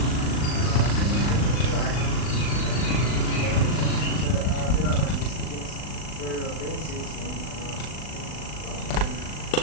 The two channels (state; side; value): late; right; 39 ms